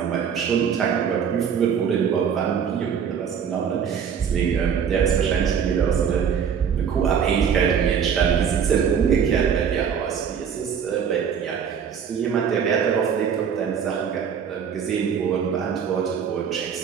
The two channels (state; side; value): quieter; left; 7.5 dB